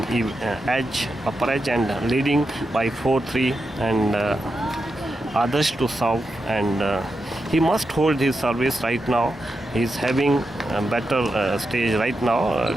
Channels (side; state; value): both; normal; correlation 0.87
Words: edge, upper edge, and leading by 4-3, and Adarsh to serve, and he must hold his service right now. He's having a better stage right now.